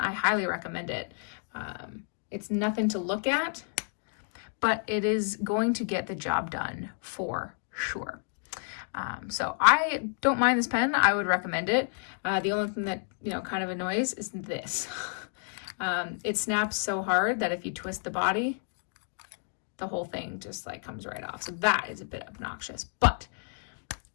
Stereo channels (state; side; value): silent; right; 55 dB below the other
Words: highly recommend it. It's nothing to look at, but it is going to get the job done for sure. So I don't mind this pen. I would recommend it. The only thing that, kind of annoys is this. It snaps so hard that if you twist the body, the whole thing just comes right off. So that is a bit obnoxious. But